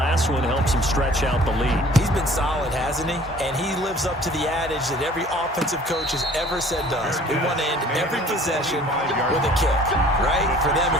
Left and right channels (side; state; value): both; normal; correlation 0.51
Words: one helps him stretch out the lead. He's been solid, hasn't he? And he lives up to the adage that every offensive coach has ever said to us. We want to end every possession with a kick, right? For them,